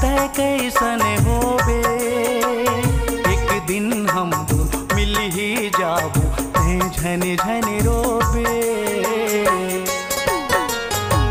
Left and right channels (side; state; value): both; identical; correlation 1.00